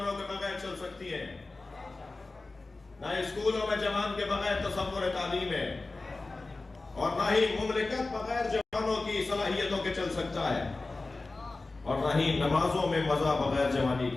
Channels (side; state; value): right; quieter; 3.4 dB